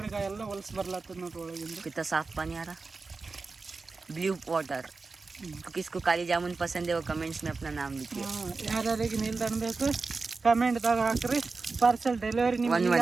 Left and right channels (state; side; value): quieter; left; 4.1 dB